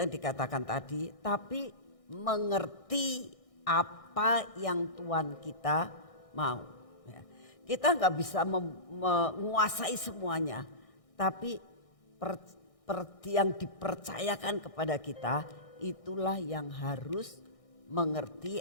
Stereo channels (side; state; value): right; late; 1.6 ms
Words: dikatakan tadi, tapi mengerti apa yang Tuhan kita mau. Kita enggak bisa menguasai semuanya, tapi yang dipercayakan kepada kita itulah yang harus mengerti